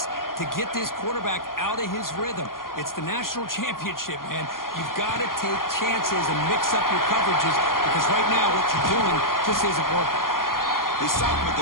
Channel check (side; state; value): right; late; 0.91 ms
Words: to get this quarterback out of his rhythm. It's the national championship, man. You've got to take chances and mix up your coverages because right now what you're doing just isn't working. They stop him at